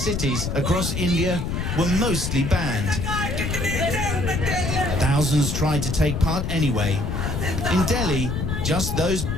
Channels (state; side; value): noise; left; rumble, 2 dB below the sound